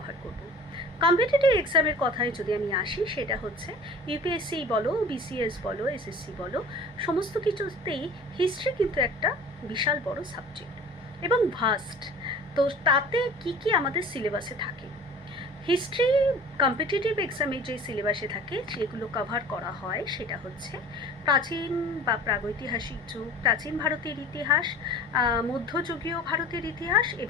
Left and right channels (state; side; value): normal; both; correlation 0.43